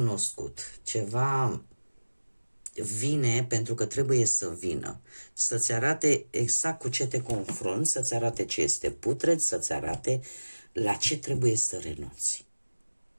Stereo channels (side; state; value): both; inverted; correlation -1.00